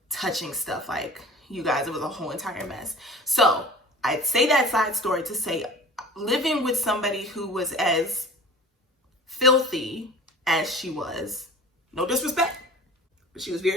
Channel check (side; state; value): both; normal; correlation 0.41